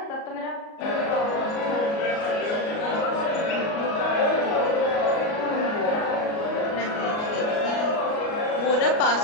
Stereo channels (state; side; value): late; right; 38 ms